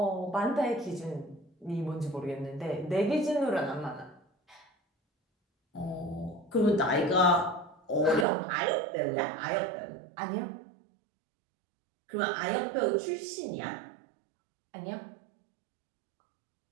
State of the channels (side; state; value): left; drops out; at 8.2 s